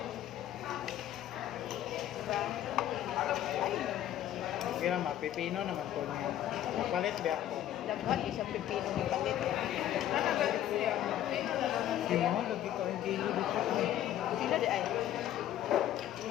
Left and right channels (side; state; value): right; quieter; 12.1 dB